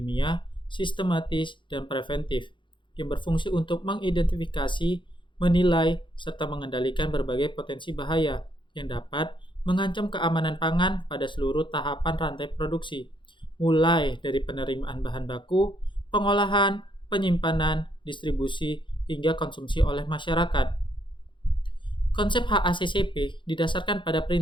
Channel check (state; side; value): late; right; 0.23 ms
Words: sistematis, dan preventif yang berfungsi untuk mengidentifikasi, menilai, serta mengendalikan berbagai potensi bahaya yang dapat mengancam keamanan pangan pada seluruh tahapan rantai produksi, mulai dari penerimaan bahan baku, pengolahan, penyimpanan, distribusi, hingga konsumsi oleh masyarakat. Konsep HACCP didasarkan pada